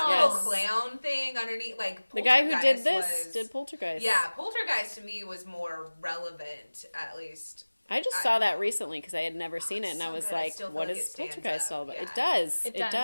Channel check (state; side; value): inverted; both; correlation -1.00